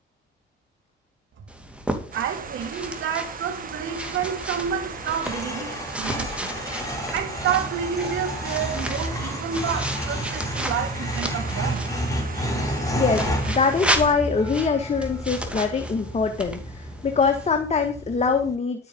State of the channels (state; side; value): normal; both; correlation 0.29